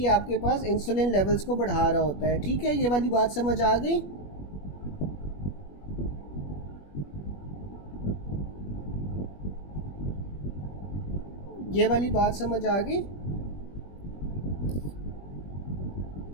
आपके पास इंसुलिन लेवल्स को बढ़ा रहा होता है। ठीक है, ये वाली बात समझ आ गई। ये वाली बात समझ आ गई।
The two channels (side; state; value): right; late; 21 ms